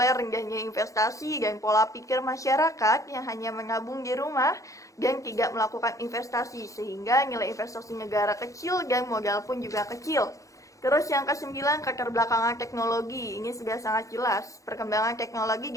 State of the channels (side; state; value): right; late; 0.16 ms